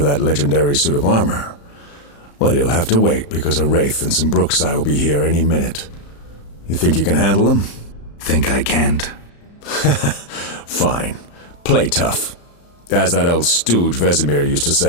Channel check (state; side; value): late; right; 35 ms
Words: that legendary suit of armor? Well, you'll have to wait, because a Wraith and some Brooksai will be here any minute. You think you can handle them? Think I can't? Fine. Play tough. As that old stooge Vesemir used to